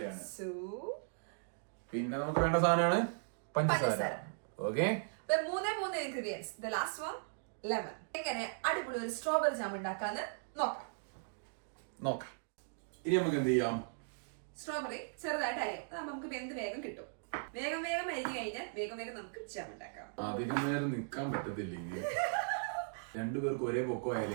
പിന്നെ നമുക്ക് വേണ്ട സാധനമാണ് പഞ്ചസാര. ഓക്കെ, മൂന്നേ ingredients. The last one lemon. എങ്ങനെ അടിപൊളി ഒരു സ്ട്രോബെറി ജാം ഉണ്ടാക്കാന്ന് നോക്കാം. ഇനി നമുക്ക് എന്ത് ചെയ്യാം? സ്ട്രോബെറി ചെറുതായിട്ട് അരിയാം. അതാകുമ്പോ നമുക്ക് വെന്ത് വേഗം കിട്ടും. വേഗം അരിഞ്ഞു കഴിഞ്ഞാൽ വേഗം നമുക്ക് ജാം ഉണ്ടാക്കാം. അധികം നേരം നിക്കാൻ പറ്റത്തില്ല ഇങ്ങനെ. രണ്ടുപേർക്ക് ഒരേ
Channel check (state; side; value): silent; left; digital silence